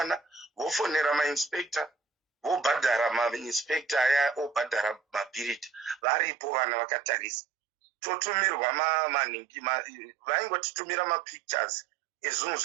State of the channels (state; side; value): drops out; left; at 6.0 s